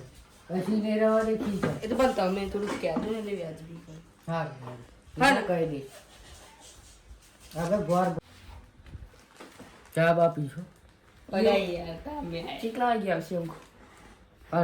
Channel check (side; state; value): both; identical; correlation 1.00